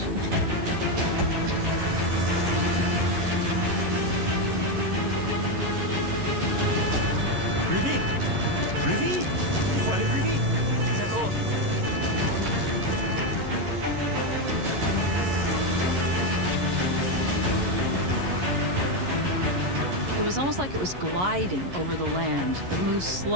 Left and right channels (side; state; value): left; late; 11 ms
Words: Plus vite! Plus vite! Il faut aller plus vite! D'accord. It was almost like it was gliding over the land. It moved